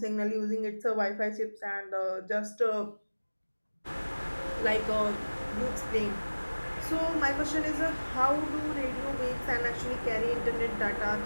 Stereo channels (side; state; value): both; inverted; correlation -1.00